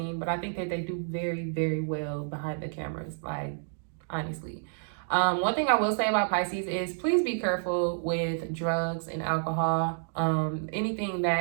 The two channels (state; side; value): silent; left; digital silence